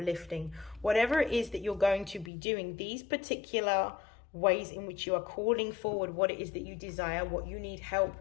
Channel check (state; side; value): drops out; right; at 2.3 s